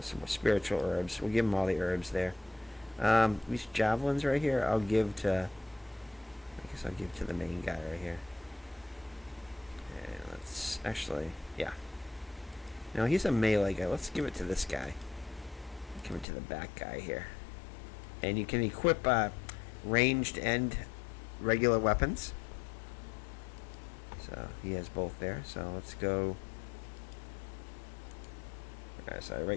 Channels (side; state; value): right; drops out; at 16.2 s